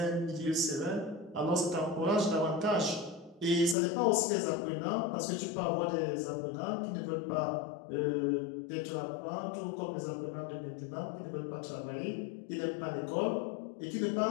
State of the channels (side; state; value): right; drops out; at 3.8 s